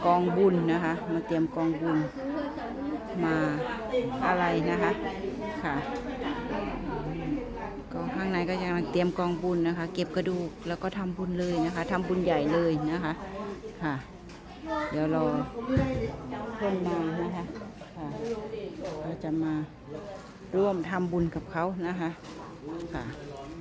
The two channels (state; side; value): identical; both; correlation 1.00